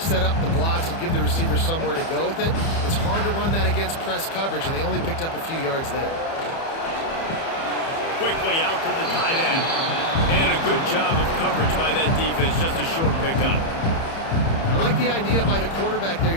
up the blocks and give the receivers somewhere to go with it. It's hard to run that against press coverage, and they only picked up a few yards there. Quickly out to the tight end. And a good job of coverage by that defense, just a short pickup. I like the idea by the quarterback there.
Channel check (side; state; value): right; late; 30 ms